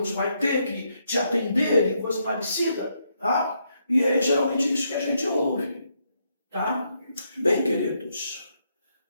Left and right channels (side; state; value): both; inverted; correlation -0.77